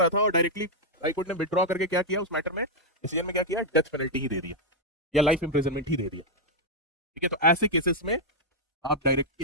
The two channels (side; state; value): both; normal; correlation -0.03